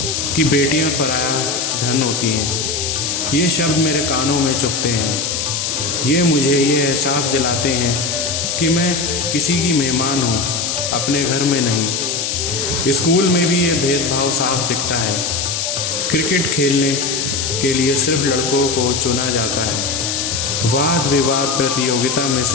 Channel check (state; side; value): noise; left; hiss, 1 dB below the sound